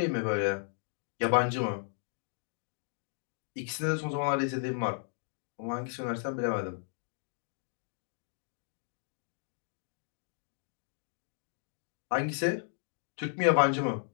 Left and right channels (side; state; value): right; silent; digital silence